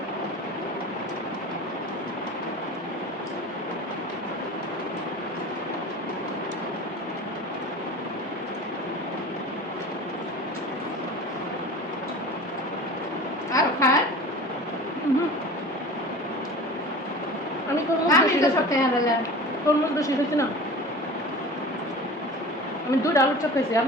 আর খায় আমি তরমুজ আমি বেশি তো খাইছি। সব খেয়ে ফেলাম তরমুজ বেশি খাইছি না, আমি 2টা আলুর চপ খাইছি,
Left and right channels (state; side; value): normal; both; correlation 0.37